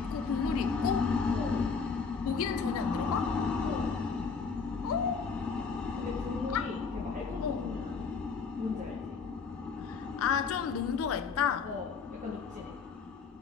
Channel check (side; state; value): right; quieter; 5.3 dB